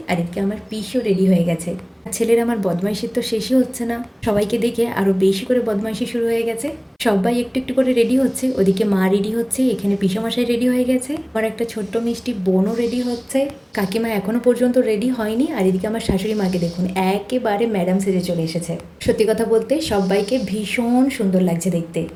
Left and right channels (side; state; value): both; identical; correlation 1.00